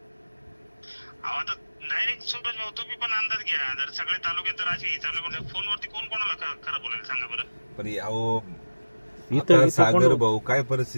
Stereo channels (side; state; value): both; inverted; correlation -1.00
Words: अहो आता डायरेक्ट सूरज भाऊ तुम्ही पण अंदाज घ्या. जर सगळे तालुक्यात जर असे चालू करतात फोनवरती कोण कोणाला खरं बोलायला सांगा बरं. पण अहो आता सागर भाऊ काय